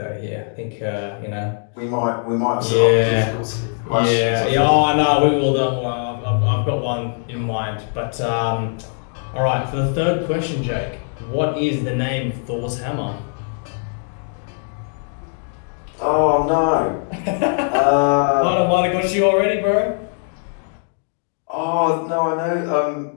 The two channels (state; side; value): silent; right; 56 dB below the other